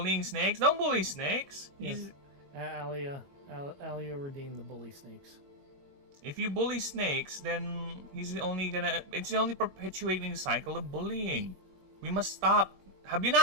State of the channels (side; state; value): left; late; 22 ms